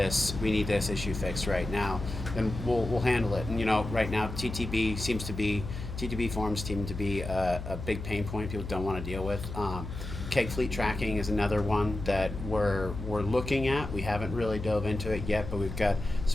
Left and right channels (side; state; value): left; noise; hum, 8 dB below the sound